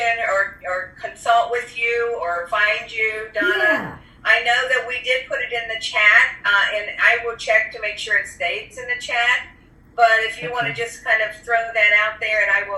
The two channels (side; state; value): both; identical; correlation 1.00